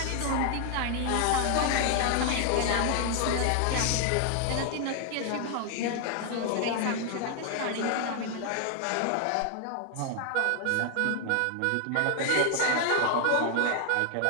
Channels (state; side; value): different; both; correlation 0.00